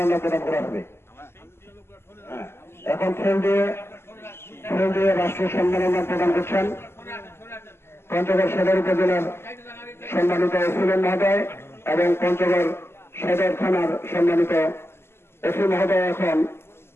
প্রদান করা হবে। এখন ফুল দিয়ে রাষ্ট্রীয় সম্মাননা প্রদান করছেন পঞ্চগড় সদর উপজেলার সম্মানিত এসিলেন মহোদয় এবং পঞ্চগড় সদর থানার সম্মানিত এসি মহোদয় এখন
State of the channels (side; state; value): right; late; 0.12 ms